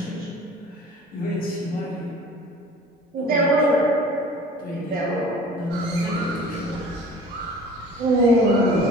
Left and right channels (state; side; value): normal; both; correlation 0.45